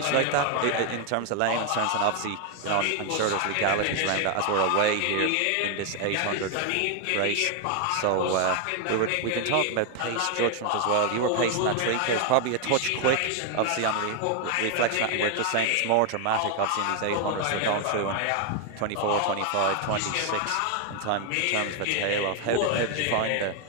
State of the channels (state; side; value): different; both; correlation 0.00